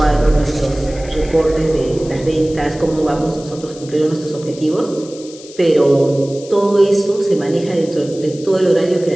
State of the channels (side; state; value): left; noise; hiss, 19 dB below the sound